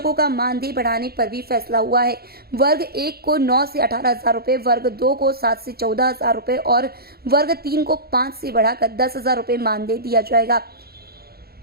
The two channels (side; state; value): left; late; 0.45 ms